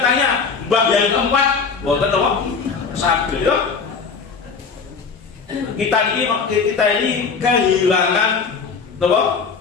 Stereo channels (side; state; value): right; quieter; 5.4 dB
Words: tanya mbah yang keempat, boten apa? Sakit ya. Kita ini kehilangan apa?